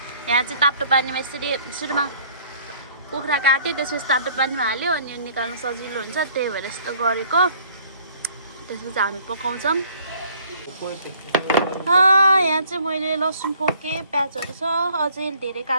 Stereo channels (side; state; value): both; inverted; correlation -0.57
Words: यहाँ चाहिँ तातो पानीमा यसरी सुरुमा कुखुरा काट्यो त्यसपछि तातो पानीमा हाल्यो अनि निकाल्न सजिलो हुन्छ त्यही भएर यस्तो गरेको त्यसपछि हामी पकाउँछौं यहाँ चाहिँ मैले लसुन पोके प्याजहरु छ अझै धेरै